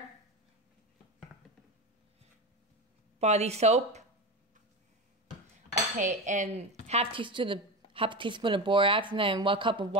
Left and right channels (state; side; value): normal; both; correlation 0.23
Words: body soap. Okay, and half teaspoon of borax, and then 1 cup of